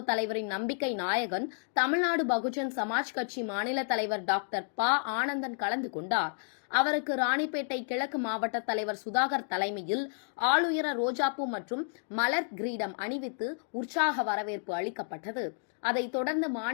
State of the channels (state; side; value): silent; right; digital silence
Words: தலைவரின் நம்பிக்கை நாயகன், தமிழ்நாடு பகுஜன் சமாஜ் கட்சி மாநில தலைவர் டாக்டர் ப. ஆனந்தன் கலந்து கொண்டார். அவருக்கு ராணிப்பேட்டை கிழக்கு மாவட்ட தலைவர் சுதாகர் தலைமையில் ஆளுயர ரோஜாப்பூ மற்றும் மலர் கிரீடம் அணிவித்து உற்சாக வரவேற்பு அளிக்கப்பட்டது. அதைத் தொடர்ந்து